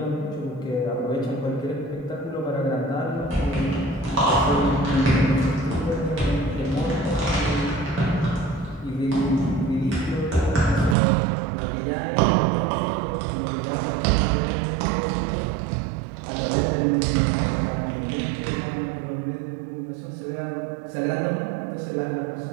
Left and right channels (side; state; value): left; drops out; at 11.0 s